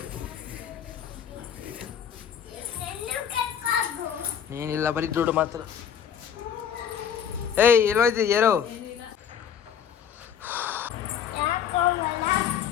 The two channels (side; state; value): right; quieter; 8.3 dB